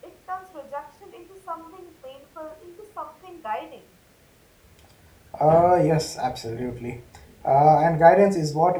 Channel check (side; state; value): both; identical; correlation 1.00